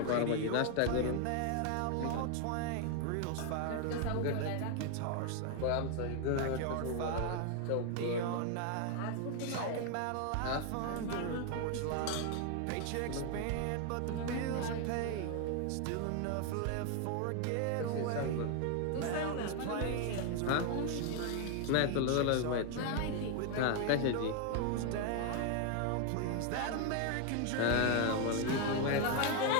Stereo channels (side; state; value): both; different; correlation 0.00